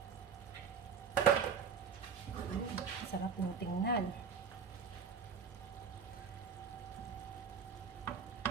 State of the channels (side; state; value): left; quieter; 6.5 dB